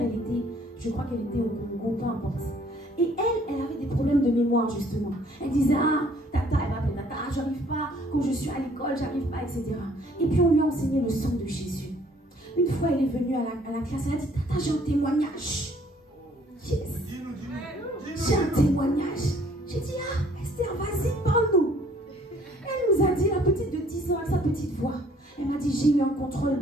je crois qu'elle était au Congo, peu importe. Et elle avait des problèmes de mémoire, justement. Elle disait, ah, tata, elle m'appelle tata, j'arrive pas, quand je suis à l'école, j'arrive pas, etc. Et puis on lui a enseigné le sang de Jésus. Une fois, elle est venue à la classe, elle a dit, tata, j'ai un témoignage. Yes. J'ai un témoignage. J'ai dit, ah, Esther, vas-y, parle-nous. Elle nous a dit, la petite de 10 ans, avec sa petite voix. Elle m'a dit, j'ai eu un contrôle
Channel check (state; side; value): normal; both; correlation 0.60